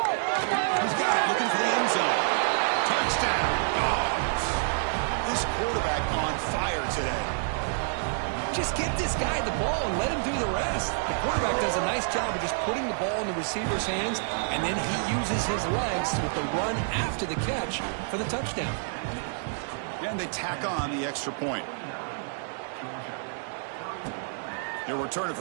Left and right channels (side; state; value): left; silent; 59 dB below the other